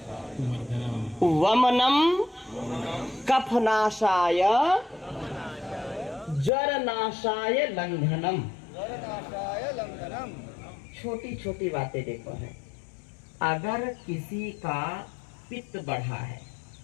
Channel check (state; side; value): drops out; right; at 6.5 s